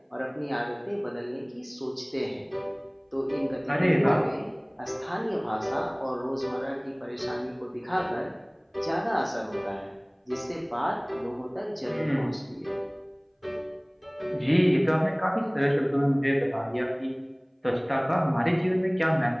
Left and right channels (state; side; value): identical; both; correlation 1.00